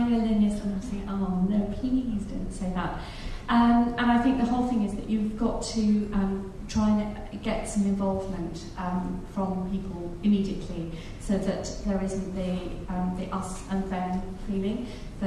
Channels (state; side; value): identical; both; correlation 1.00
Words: And I'm saying, oh no, please don't say that. And I think the whole thing is that you've got to try and get some involvement from people immediately, so that there isn't the us and them feeling,